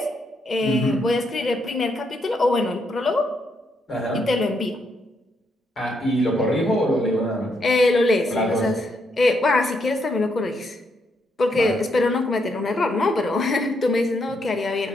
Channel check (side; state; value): both; normal; correlation 0.77